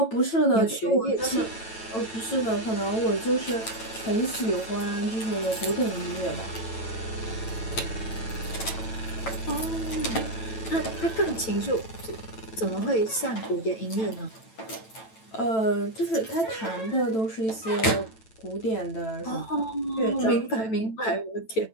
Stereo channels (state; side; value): late; right; 9.0 ms